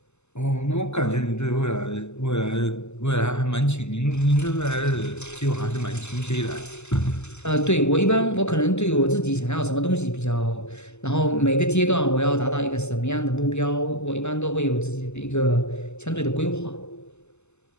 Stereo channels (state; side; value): late; right; 0.82 ms